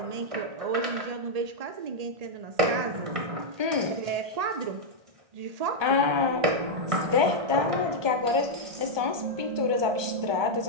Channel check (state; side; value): late; left; 1.2 ms